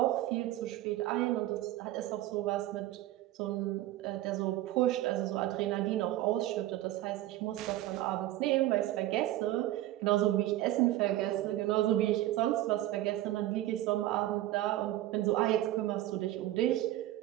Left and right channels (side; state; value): left; quieter; 15.0 dB